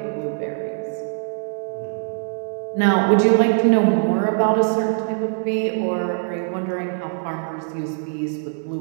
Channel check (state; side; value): silent; left; digital silence